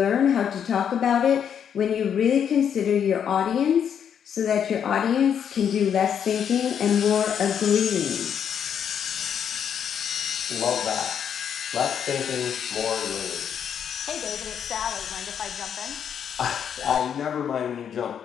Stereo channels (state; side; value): quieter; right; 8.3 dB